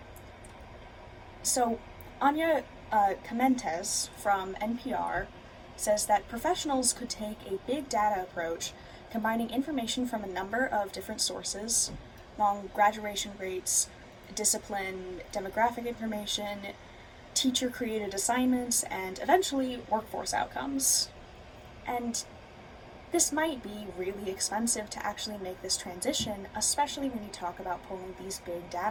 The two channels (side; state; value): both; identical; correlation 1.00